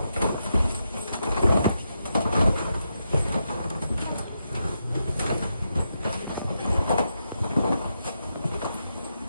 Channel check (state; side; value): inverted; both; correlation -0.84